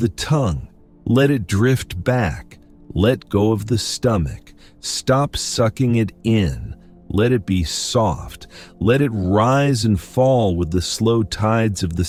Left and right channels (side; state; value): both; identical; correlation 1.00